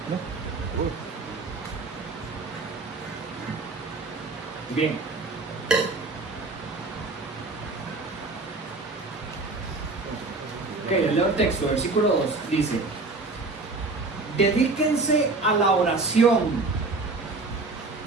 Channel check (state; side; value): quieter; left; 3.5 dB